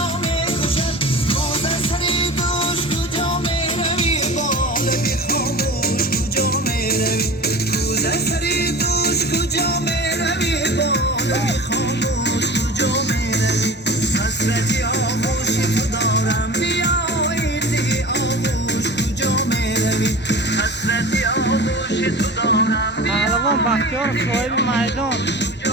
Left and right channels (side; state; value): both; normal; correlation 0.35